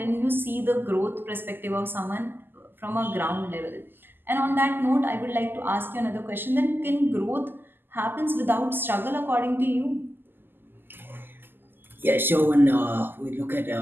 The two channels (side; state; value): left; late; 0.096 ms